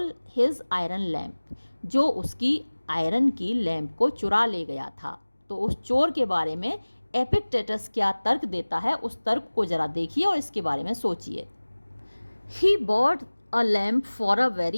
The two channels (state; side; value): inverted; both; correlation -1.00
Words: his iron lamp, जो उसकी आयरन की लैम्प को चुरा ले गया था, तो उस चोर के बारे में एपिक्टेटस क्या तर्क देता है, उस तर्क को जरा देखिए और इसके बारे में सोचिए। He bought a lamp for a